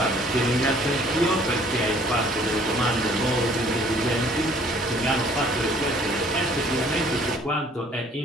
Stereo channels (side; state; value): both; normal; correlation 0.57